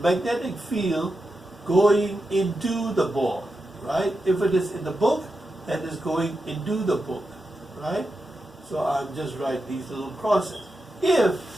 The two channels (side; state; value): both; normal; correlation 0.88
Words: magnetic field going into the board, right? If it is in the book, that is going into the book, right? So I'll just write these little crosses. If